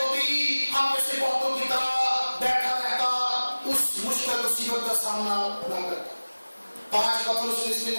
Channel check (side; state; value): both; inverted; correlation -1.00